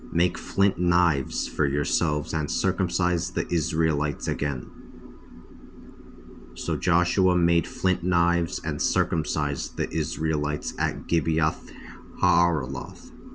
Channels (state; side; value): identical; both; correlation 1.00